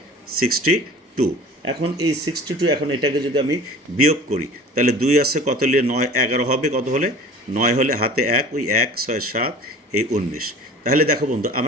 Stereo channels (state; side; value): normal; both; correlation 0.42